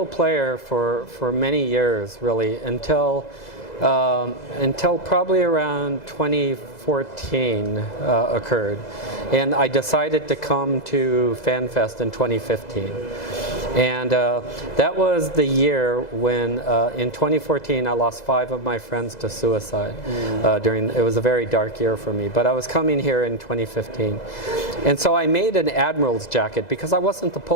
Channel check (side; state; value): right; late; 2.0 ms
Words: player for many years, really, until probably around 2014 occurred. And I decided to come to Fanfest in 2015. And that was the year when, in 2014, I lost 5 of my friends to suicide. It was a very dark year for me, but I was coming here in 2015. And so I made an admiral's jacket because I wasn't the